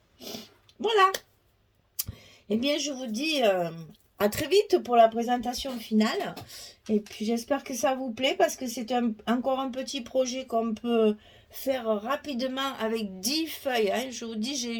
Voilà. Eh bien, je vous dis à très vite pour la présentation finale. Et puis, j'espère que ça vous plaît parce que c'est encore un petit projet qu'on peut faire rapidement avec 10 feuilles. Hein. Je vous dis, j'ai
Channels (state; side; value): identical; both; correlation 1.00